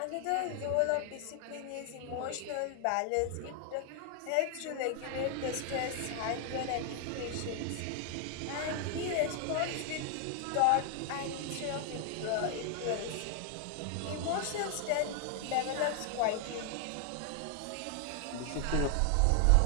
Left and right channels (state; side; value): different; both; correlation 0.00